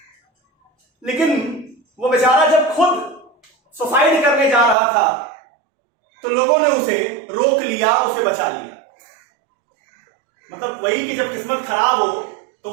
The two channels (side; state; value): left; drops out; at 4.8 s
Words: लेकिन वो बेचारा जब खुद सुसाइड करने जा रहा था तो लोगों ने उसे रोक लिया, उसे बचा लिया। मतलब वही कि जब किस्मत खराब हो तो